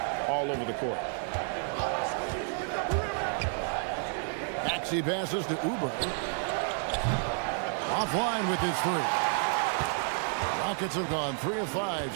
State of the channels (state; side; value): silent; left; 57 dB below the other